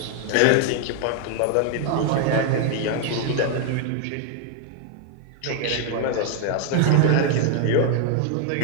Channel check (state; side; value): different; both; correlation 0.00